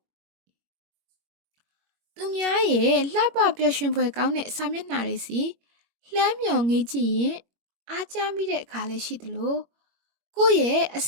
သူများရဲ့လှပပျော်ရွှင်ဖွယ်ကောင်းတဲ့စာမျက်နှာတွေစီလှမ်းမြော်ငေးကြည့်ရင်အားကျမိတဲ့အခါလည်းရှိသလိုကိုယ့်ရဲ့အ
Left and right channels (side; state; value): left; late; 21 ms